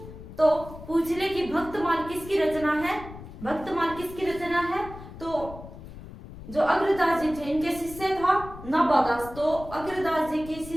तो पूछ ले कि भक्तमाल किसकी रचना है? भक्तमाल किसकी रचना है? तो जो अग्रदास जी थे इनके शिष्य था नाबादास, तो अग्रदास जी के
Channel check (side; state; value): left; noise; rumble, 14 dB below the sound